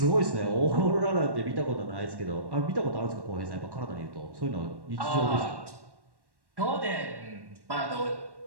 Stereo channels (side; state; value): left; late; 1.1 ms